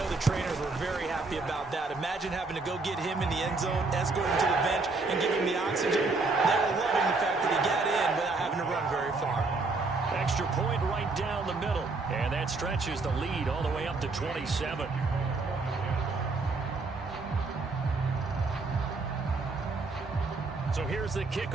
the trainers were very happy about that. Imagine having to go get him in the end zone, escort him to the bench, and give him the oxygen. They were loving the fact that he got in without having to run very far. Extra point right down the middle. And that stretches the lead all the way up to 27. So here's the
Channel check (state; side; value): quieter; left; 3.7 dB